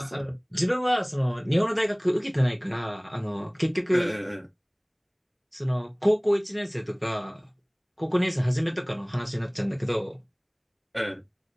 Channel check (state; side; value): identical; both; correlation 1.00